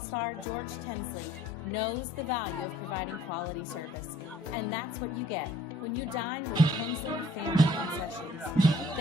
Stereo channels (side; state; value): both; normal; correlation 0.59